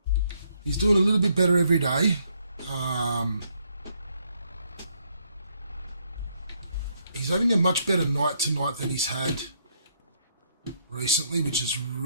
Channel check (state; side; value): inverted; both; correlation -0.72